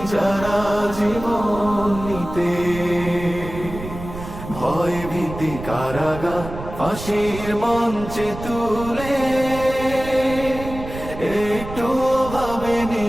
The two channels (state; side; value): noise; right; rumble, 10 dB below the sound